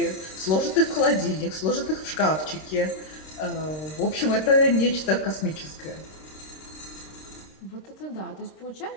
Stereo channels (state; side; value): late; right; 26 ms